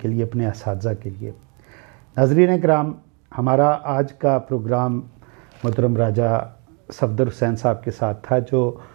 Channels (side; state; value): left; quieter; 34.8 dB